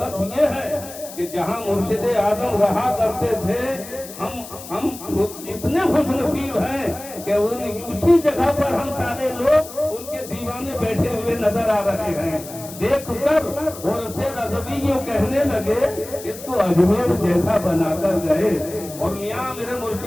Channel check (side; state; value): left; noise; hiss, 14 dB below the sound